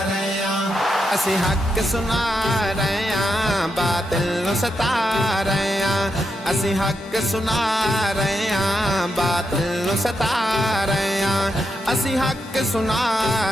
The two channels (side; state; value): both; normal; correlation 0.84